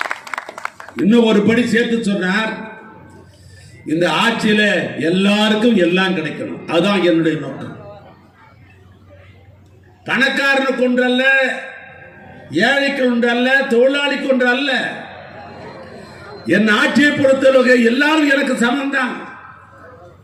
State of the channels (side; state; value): both; identical; correlation 1.00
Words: இன்னும் ஒரு படி சேர்த்து சொன்னார், இந்த ஆட்சியில எல்லாருக்கும் எல்லாம் கிடைக்கணும், அதுதான் என்னுடைய நோக்கம். பணக்காரனுக்கு ஒன்று அல்ல, ஏழைக்கு ஒன்று அல்ல, தொழிலாளிக்கு ஒன்று அல்ல. என் ஆட்சியை பொறுத்தவரை எல்லாரும் எனக்கு சமம் தான்,